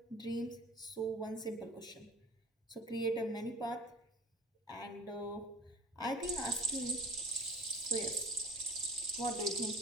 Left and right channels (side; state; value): both; normal; correlation 0.39